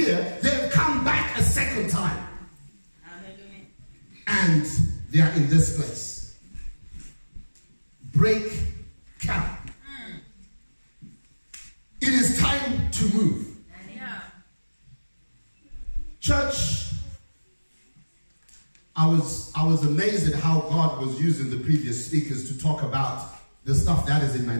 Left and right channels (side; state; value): both; inverted; correlation -1.00